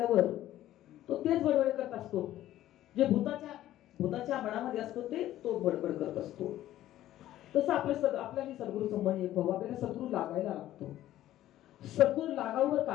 तो तेच बडबड करत असतो, जे भूताच्या मनामध्ये असतो ते तो बडबड करत असतो. तसं आपल्याला सद्गुरूचं मन एक व्हावं, आपल्याला सद्गुरू लागायला लागतो. सद्गुरू लागावर का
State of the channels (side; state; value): right; quieter; 13.6 dB